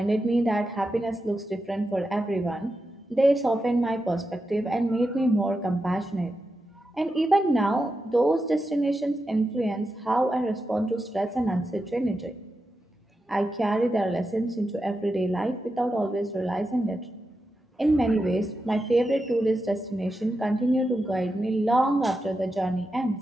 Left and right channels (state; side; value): normal; both; correlation 0.88